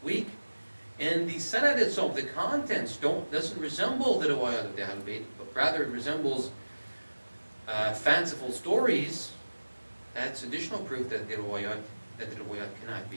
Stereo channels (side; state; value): both; inverted; correlation -1.00